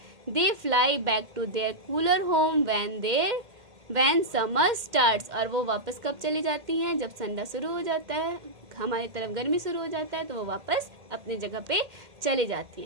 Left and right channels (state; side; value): late; left; 2.1 ms